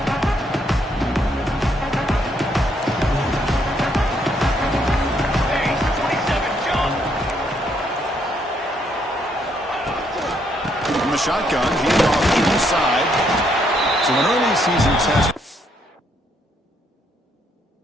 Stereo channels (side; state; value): both; normal; correlation 0.72